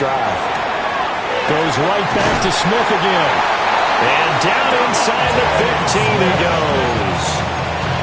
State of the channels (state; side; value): identical; both; correlation 1.00